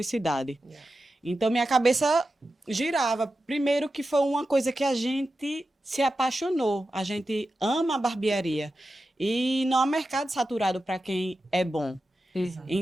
Então, minha cabeça girava. Primeiro que foi uma coisa que a gente se apaixonou. A gente ama a barbearia. E não há mercado saturado para quem é bom.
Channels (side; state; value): both; normal; correlation 0.91